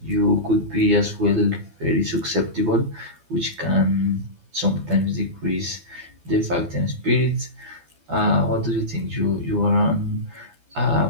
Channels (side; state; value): left; late; 12 ms